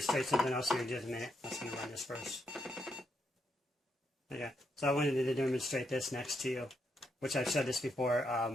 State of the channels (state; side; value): normal; both; correlation 0.79